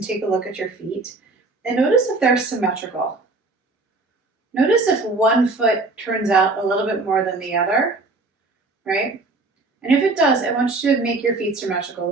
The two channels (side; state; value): left; quieter; 3.4 dB